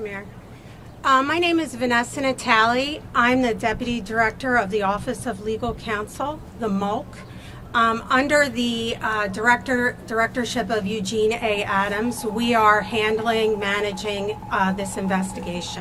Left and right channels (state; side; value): identical; both; correlation 1.00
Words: My name is Vanessa Natali. I'm the Deputy Director of the Office of Legal Counsel, the MOLC. Under the directorship of Eugene A. Adams, we are managing this